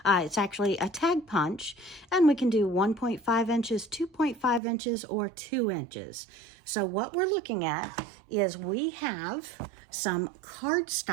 It's actually a tag punch, and we can do 1.5 inches, 2.5 inches, or 2 inches. So what we're looking at is we have some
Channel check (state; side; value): drops out; left; at 4.6 s